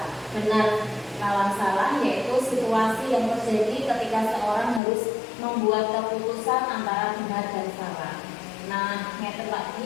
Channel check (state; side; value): drops out; right; at 4.8 s